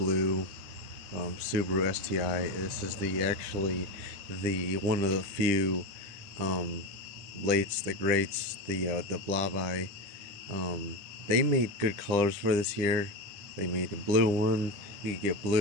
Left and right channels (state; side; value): late; left; 10 ms